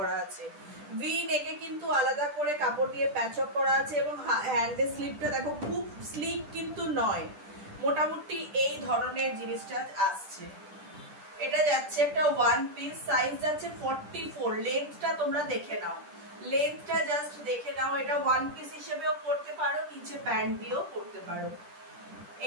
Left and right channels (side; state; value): left; late; 10 ms